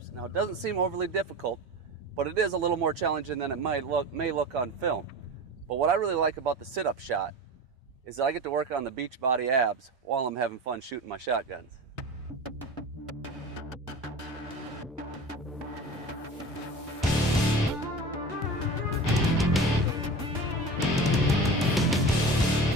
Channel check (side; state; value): both; normal; correlation 0.32